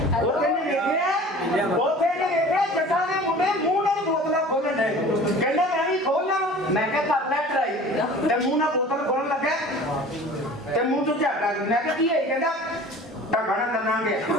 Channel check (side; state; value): both; normal; correlation 0.43